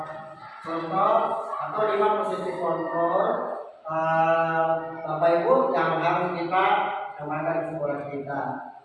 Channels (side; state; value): both; identical; correlation 1.00